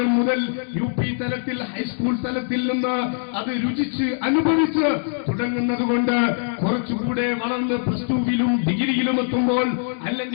മുതൽ UP തലത്തിൽ ഹൈസ്കൂൾ തലത്തിൽ നിന്ന് അത് രുചിച്ച് അനുഭവിച്ച് തുടങ്ങുന്നത് കൊണ്ട് കുറച്ചുകൂടെ വളർന്ന് +2-വിലും ഡിഗ്രിയിലും എത്തുമ്പോൾ,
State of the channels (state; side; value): silent; right; digital silence